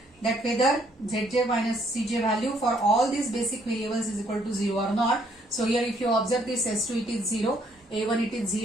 that whether Zj minus Cj value for all these basic variables is equal to 0 or not. So here if you observe this S2 it is 0, A1 it is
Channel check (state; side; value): normal; both; correlation 0.67